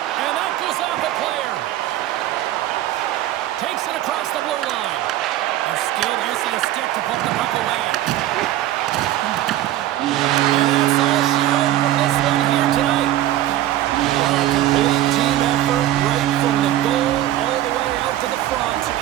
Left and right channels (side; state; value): left; quieter; 13.8 dB